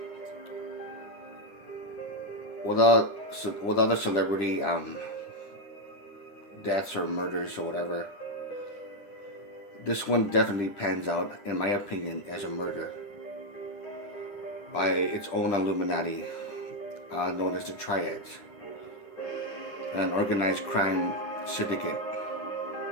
With other celebrity deaths or murders or whatever, this one definitely pans out, in my opinion, as a murder by its own Illuminati, known as the Triads, an organized crime syndicate.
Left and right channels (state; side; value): late; right; 10 ms